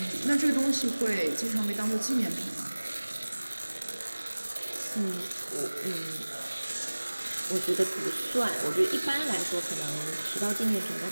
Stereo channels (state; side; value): inverted; both; correlation -1.00